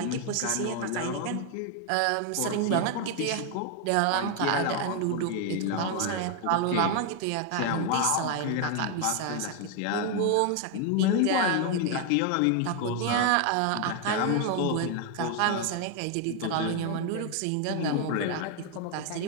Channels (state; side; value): different; both; correlation 0.01